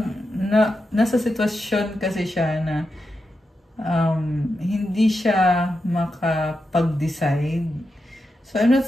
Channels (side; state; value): both; normal; correlation 0.88